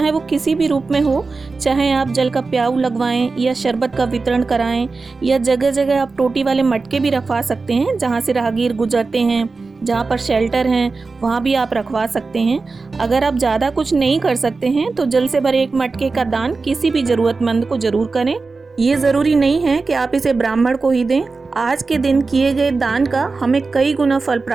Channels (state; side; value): quieter; left; 4.1 dB